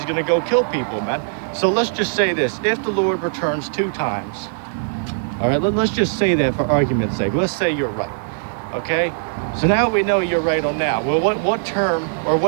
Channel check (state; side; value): silent; left; 58 dB below the other